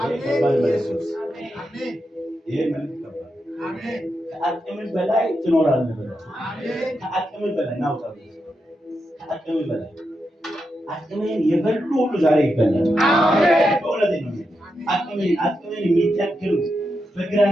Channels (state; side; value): normal; both; correlation 0.86